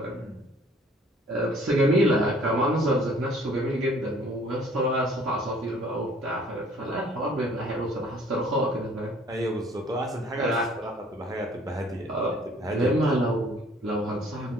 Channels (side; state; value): both; normal; correlation 0.56